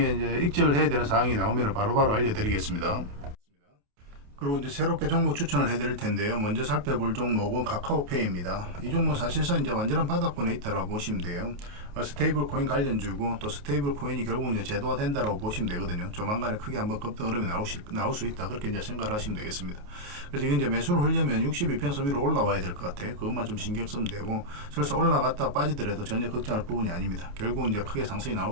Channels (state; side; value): late; left; 28 ms